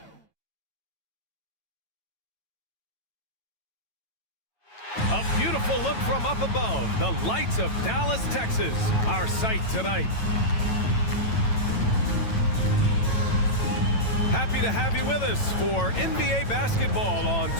A beautiful look from up above, the lights of Dallas, Texas, our sight tonight. Happy to have you with us for NBA basketball on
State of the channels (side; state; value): right; late; 9.0 ms